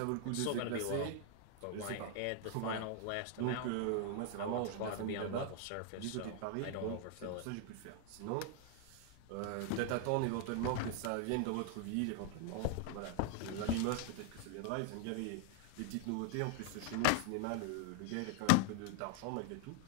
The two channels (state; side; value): different; both; correlation 0.00